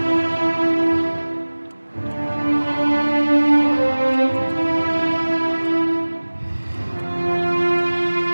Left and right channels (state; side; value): inverted; both; correlation -1.00